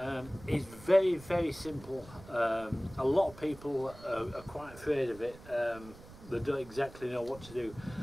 It's very simple. A lot of people are quite afraid of it. They don't exactly know what to do.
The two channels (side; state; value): right; noise; rumble, 18 dB below the sound